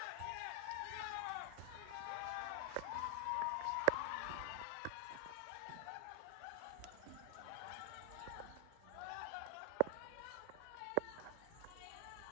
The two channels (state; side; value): different; both; correlation 0.00